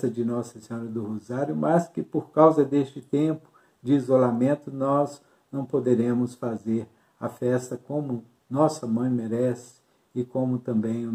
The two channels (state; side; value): identical; both; correlation 1.00